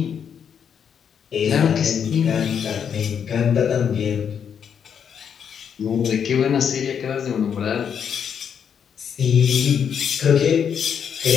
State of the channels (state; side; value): quieter; right; 7.7 dB